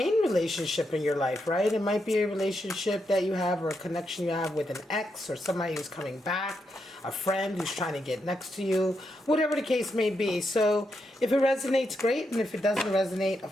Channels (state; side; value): normal; both; correlation 0.83